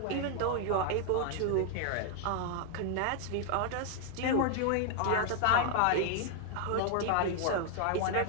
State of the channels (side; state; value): both; different; correlation 0.00